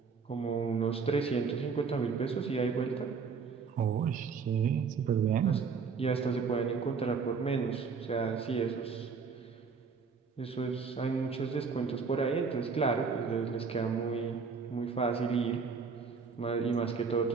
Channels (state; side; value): quieter; left; 5.4 dB